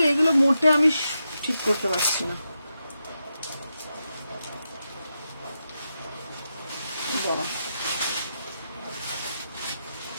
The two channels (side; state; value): both; inverted; correlation -0.87